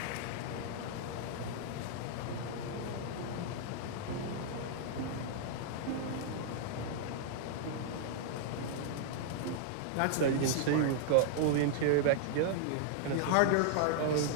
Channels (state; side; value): different; both; correlation -0.01